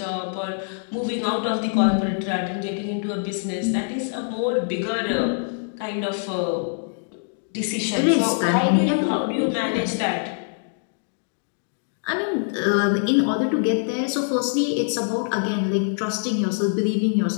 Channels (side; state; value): right; silent; digital silence